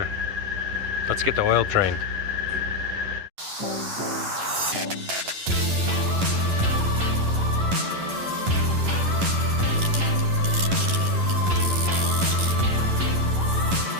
Let's get the oil drained.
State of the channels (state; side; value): late; left; 11 ms